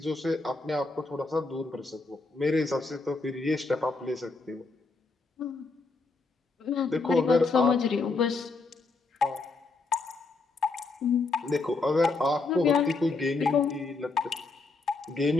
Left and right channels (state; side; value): quieter; right; 3.7 dB